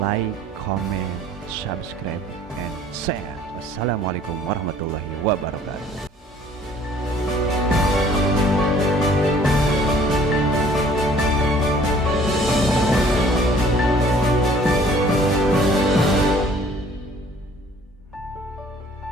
like, comment, subscribe, and share. Wassalamualaikum warahmatullahi wabarakatuh.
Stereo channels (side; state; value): both; normal; correlation 0.55